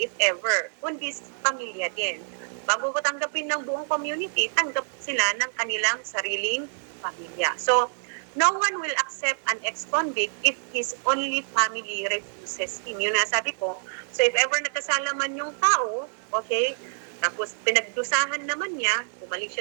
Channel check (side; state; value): left; silent; 56 dB below the other